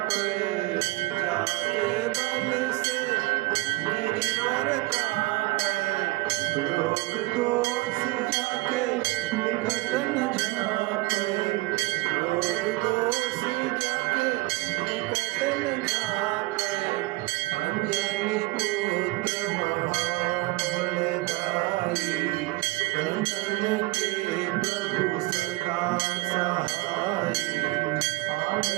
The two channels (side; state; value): left; quieter; 21.5 dB